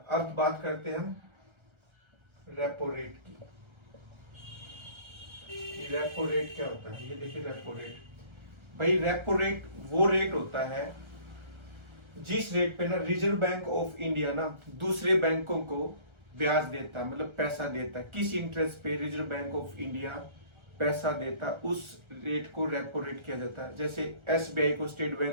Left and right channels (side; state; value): left; late; 1.3 ms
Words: अब बात करते हैं हम रेपो रेट की। रेपो रेट क्या होता है? ये देखिए रेपो रेट। भाई रेपो रेट वो रेट होता है जिस रेट पे ना रिजर्व बैंक ऑफ इंडिया ना दूसरे बैंकों को ब्याज देता है, मतलब पैसा देता है। किस इंटरेस्ट पे रिजर्व बैंक ऑफ इंडिया पैसा देता, उस रेट को रेपो रेट किया जाता है। जैसे एसबीआई को, स्टेट